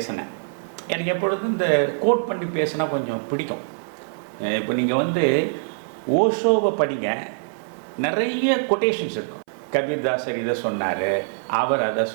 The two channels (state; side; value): silent; left; 63 dB below the other